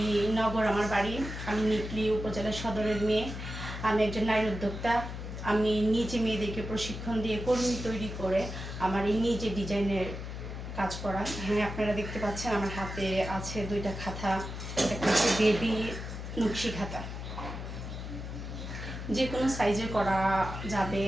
নগর আমার বাড়ি। আমি নিকলি উপজেলা সদরের মেয়ে। আমি একজন নারী উদ্যোক্তা। আমি নিজে মেয়েদেরকে প্রশিক্ষণ দিয়ে কর্মী তৈরি করে আমার এই নিজে ডিজাইনের কাজ করা। এখানে আপনারা দেখতে পাচ্ছেন আমার হাতে আছে দুইটা খাতা, একটা হচ্ছে বেবি নকশি খাতা। যে কোনো সাইজে করা যাবে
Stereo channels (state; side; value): noise; left; hum, 7 dB below the sound